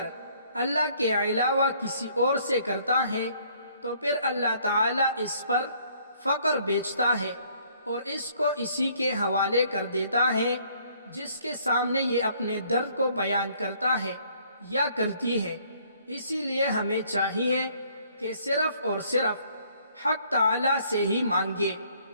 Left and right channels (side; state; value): both; inverted; correlation -0.63